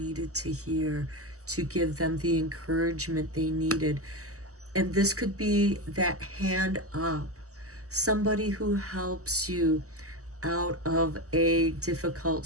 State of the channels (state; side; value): late; left; 0.66 ms